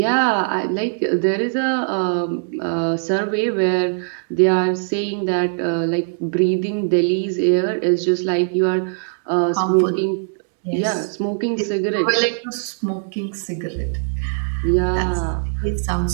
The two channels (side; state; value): left; silent; digital silence